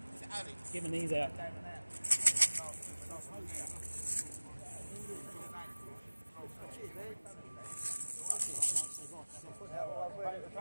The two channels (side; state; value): both; inverted; correlation -1.00